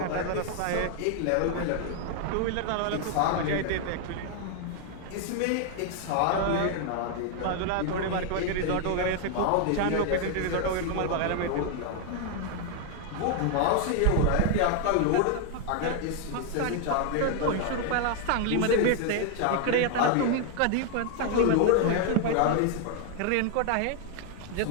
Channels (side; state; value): both; different; correlation 0.00